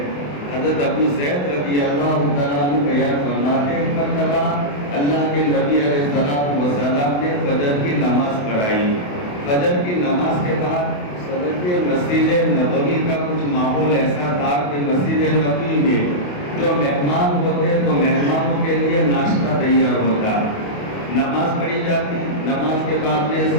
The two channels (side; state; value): right; late; 28 ms